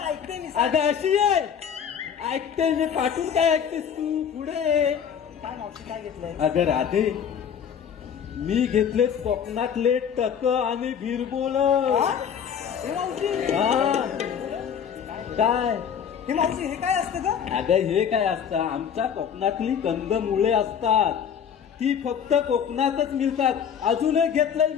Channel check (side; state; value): right; quieter; 7.9 dB